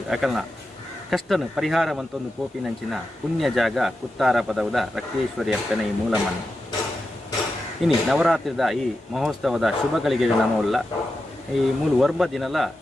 ಅಕಲ್ನ ಕಷ್ಟನು ಪರಿಹಾರ ಮಂತೊಂದು ಕೋಪಿನಂಚಿನ ಪುಣ್ಯ ಜಾಗ ಕುತ್ತಾರ ಪದವದ ರಕ್ತೇಶ್ವರಿ ಅಪ್ಪನ ಈ ಮೂಲ ಮಣ್ಣು ಇನಿ ನವರಾತ್ರಿದ ಈ ಮಹೋತ್ಸವದ ಶುಭಗಳಿಗೆ ನಮವಲ್ಲ ಈ ಮೂಲ ವರ್ಬ ದಿನಲ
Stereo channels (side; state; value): both; normal; correlation 0.89